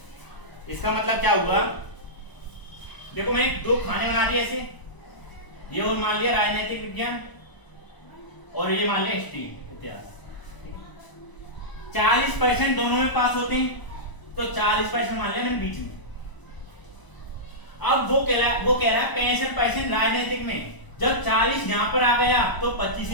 इसका मतलब क्या हुआ? देखो मैंने दो खाने बना दिए ऐसे, ये और मान लिया राजनीतिक विज्ञान और ये मान लिया हिस्ट्री इतिहास। 40% दोनों में पास होते हैं, तो 40% मान लिया मैंने बीच में। अब वो कह रहा है 65% राजनीतिक में। जब 40 यहां पर आ गया तो 25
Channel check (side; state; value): right; late; 1.0 ms